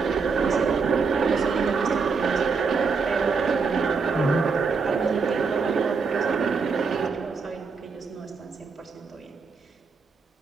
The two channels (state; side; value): quieter; left; 5.0 dB